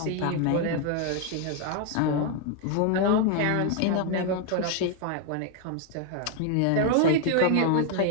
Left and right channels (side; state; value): both; different; correlation 0.01